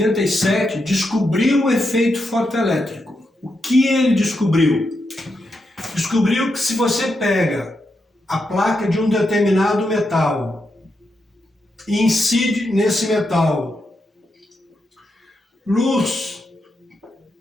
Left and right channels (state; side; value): normal; both; correlation 0.84